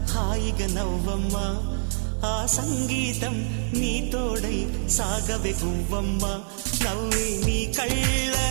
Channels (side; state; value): left; silent; digital silence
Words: హాయిగా నవ్వమ్మా ఆ సంగీతం నీ తోడై సాగవే గువ్వమ్మ నవ్వే నీ